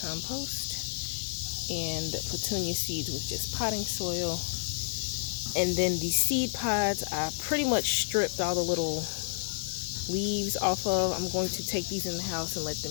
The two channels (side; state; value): right; silent; 58 dB below the other